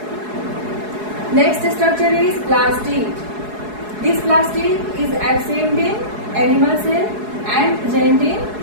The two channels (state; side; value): late; left; 4.7 ms